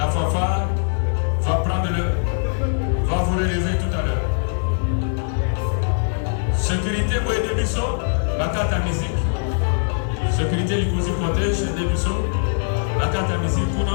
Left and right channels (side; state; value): right; silent; digital silence